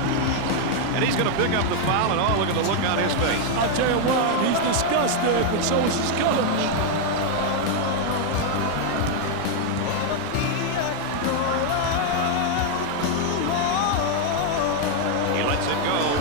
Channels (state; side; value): different; both; correlation 0.00